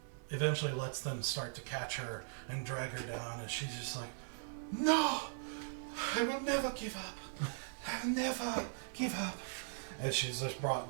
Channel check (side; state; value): left; silent; digital silence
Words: eventually lets them start to catch her and drag her down, and she's just like, "No, I will never give up. I will never give up." And she's just brought